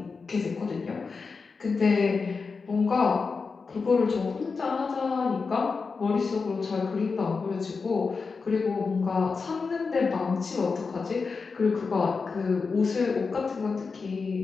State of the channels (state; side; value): quieter; right; 4.8 dB